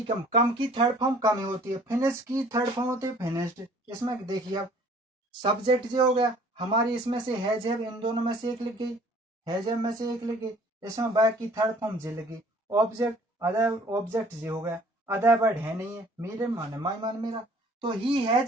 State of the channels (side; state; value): both; normal; correlation 0.54